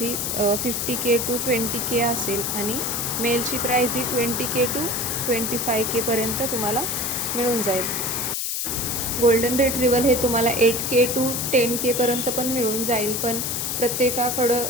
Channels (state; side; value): noise; left; hiss, 1 dB below the sound